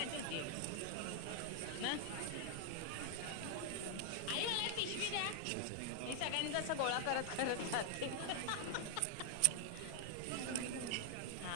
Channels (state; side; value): different; both; correlation 0.00